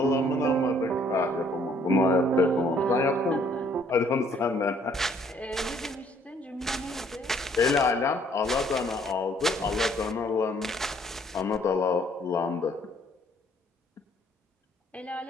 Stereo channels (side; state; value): both; normal; correlation 0.62